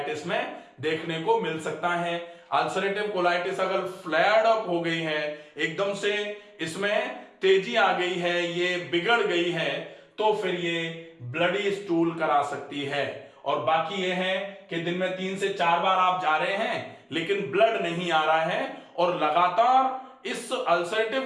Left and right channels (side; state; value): both; identical; correlation 1.00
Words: में देखने को मिल सकता है। अल्सरेटिव कोलाइटिस अगर फ्लेयर्ड अप हो गई है, एकदम से इसमें तेजी आ गई है, ये बिगड़ गई है, तो फिर ये ब्लडी स्टूल करा सकती है। और बाकी ये है कि दिन में 3 से 4 बार आप जा रहे हैं लेकिन ब्लड नहीं आ रहा है और लगातार इस अल्सरेटिव